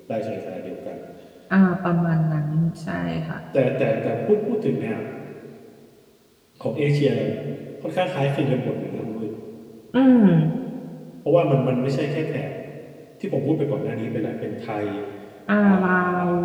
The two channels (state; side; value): identical; both; correlation 1.00